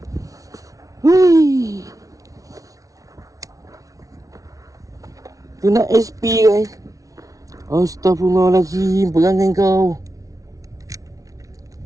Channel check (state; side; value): late; left; 0.17 ms